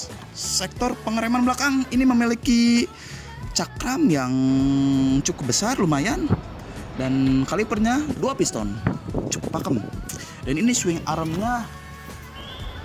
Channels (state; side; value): identical; both; correlation 1.00